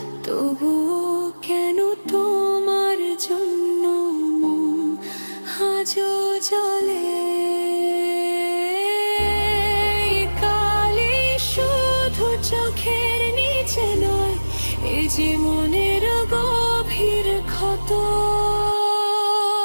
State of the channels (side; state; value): both; inverted; correlation -1.00